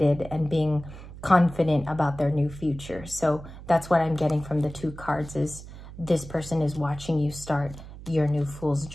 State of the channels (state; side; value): noise; right; hum, 15 dB below the sound